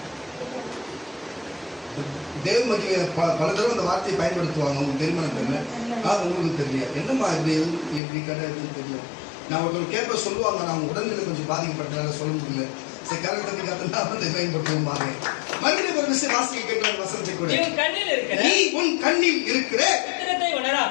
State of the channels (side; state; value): right; drops out; at 8.0 s